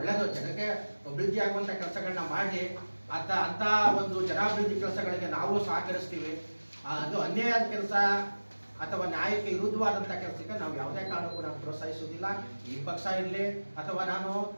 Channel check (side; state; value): both; inverted; correlation -1.00